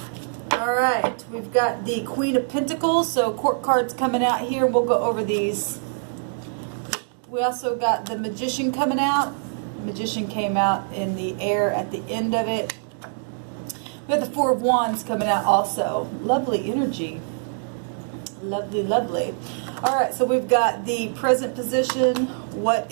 All right, we've got the Queen of Pentacles. So court cards coming out here. We'll go over these. We also got the Magician coming out. Magician came out in the air at the end of it. We have the Four of Wands coming out also. Lovely energy. Lovely, lovely. All right, so we've got the present position, what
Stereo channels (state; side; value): silent; left; digital silence